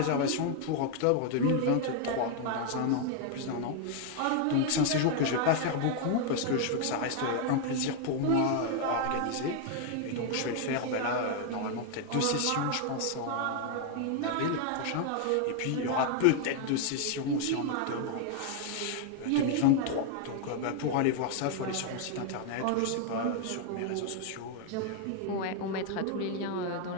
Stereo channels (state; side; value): different; both; correlation 0.00